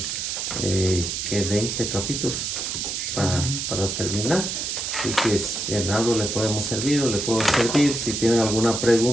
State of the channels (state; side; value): noise; right; hiss, 3 dB below the sound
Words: 20 capítulos para terminar. Así que en algo le podemos servir o le puedo servir. Si tienen alguna